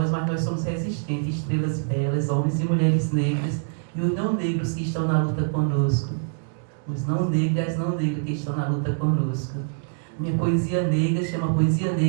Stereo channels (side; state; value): left; silent; digital silence